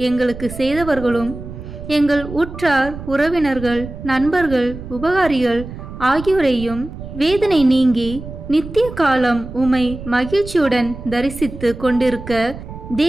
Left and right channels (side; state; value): right; noise; rumble, 12 dB below the sound